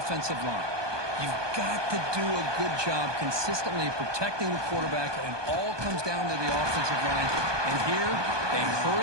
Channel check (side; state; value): left; late; 1.2 ms